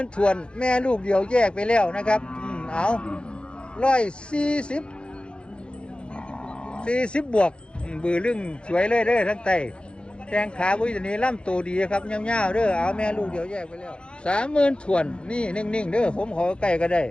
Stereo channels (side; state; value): right; late; 0.056 ms